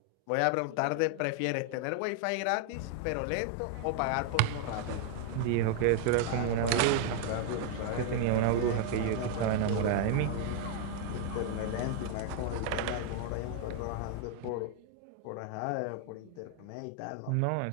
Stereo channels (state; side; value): different; both; correlation 0.00